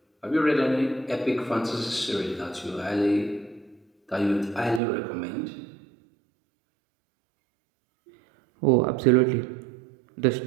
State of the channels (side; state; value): left; drops out; at 4.8 s